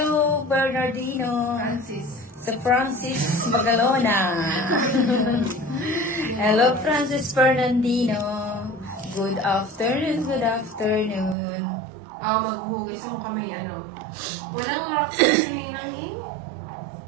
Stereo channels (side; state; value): left; drops out; at 11.4 s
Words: Bernardino. Francis. Sa Francis Magalona. Hello, Francis Bernardino. Good afternoon, good afternoon. Maghuhugis ako kami, ano. Walang rock sa silingan eh.